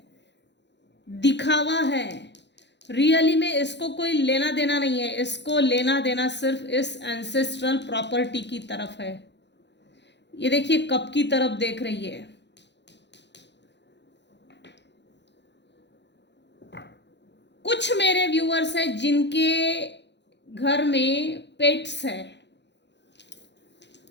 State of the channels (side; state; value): right; late; 0.51 ms